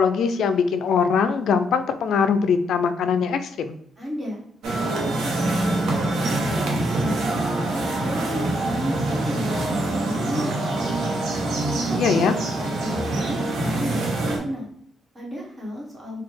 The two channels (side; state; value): both; normal; correlation 0.75